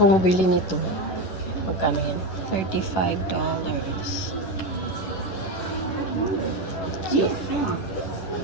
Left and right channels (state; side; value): late; right; 11 ms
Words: kong bili nito. Magkano yan? $35. Cute.